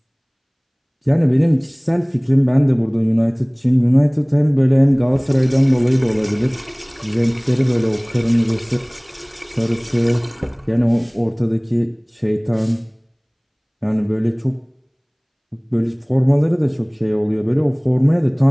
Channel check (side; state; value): both; identical; correlation 1.00